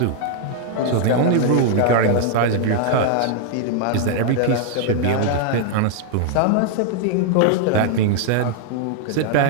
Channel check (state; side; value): different; both; correlation 0.00